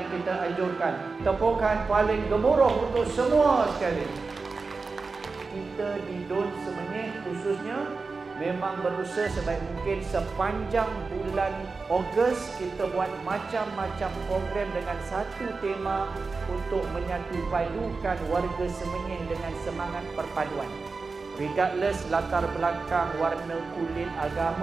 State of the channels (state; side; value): quieter; left; 4.3 dB